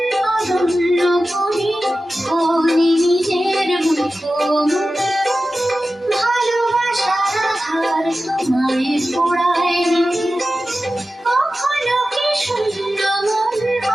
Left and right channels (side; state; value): both; normal; correlation 0.94